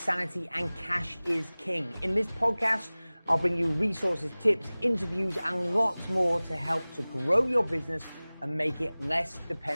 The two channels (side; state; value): both; inverted; correlation -0.99